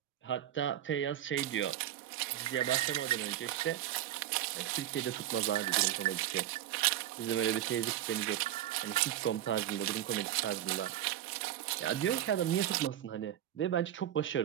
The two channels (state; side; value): quieter; left; 12.1 dB